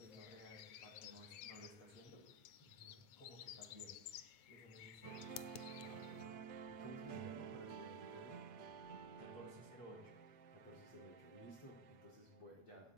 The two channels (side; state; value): right; late; 9.2 ms